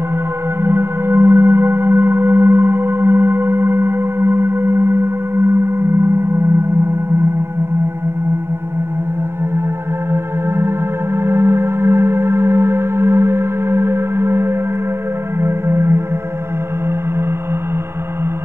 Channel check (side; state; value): left; late; 0.12 ms